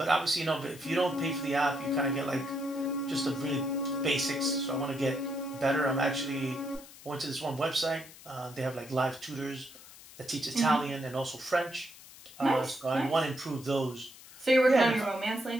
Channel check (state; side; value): noise; left; hiss, 19 dB below the sound